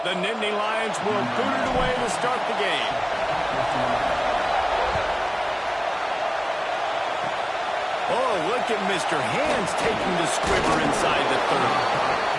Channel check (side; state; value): both; identical; correlation 1.00